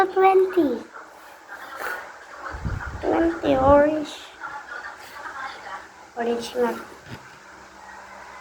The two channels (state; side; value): identical; both; correlation 1.00